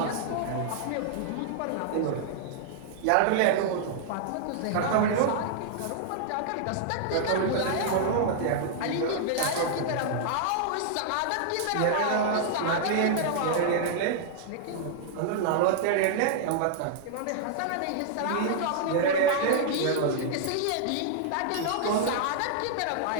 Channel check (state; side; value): different; both; correlation -0.01